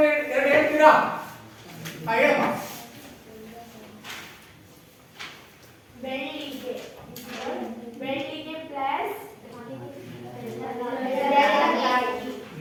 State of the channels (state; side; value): identical; both; correlation 1.00